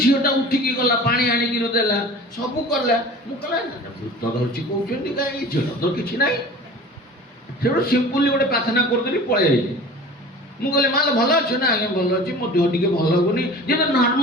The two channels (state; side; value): normal; both; correlation 0.40